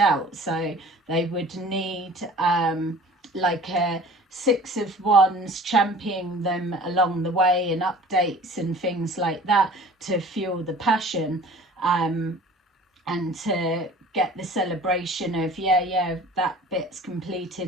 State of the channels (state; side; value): normal; both; correlation 0.45